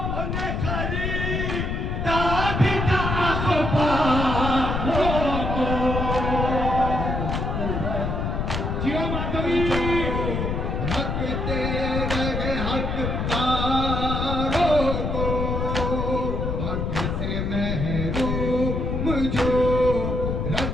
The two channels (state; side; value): noise; left; rumble, 1 dB below the sound